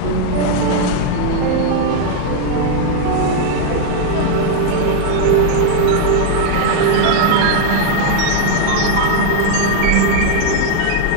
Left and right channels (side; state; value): both; different; correlation 0.00